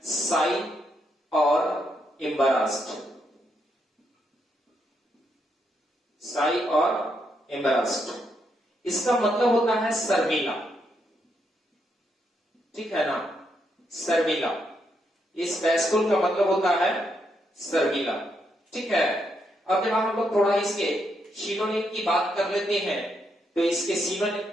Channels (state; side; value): normal; both; correlation 0.79